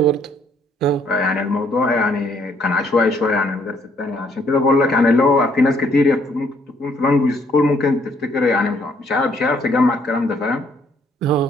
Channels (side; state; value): both; normal; correlation 0.67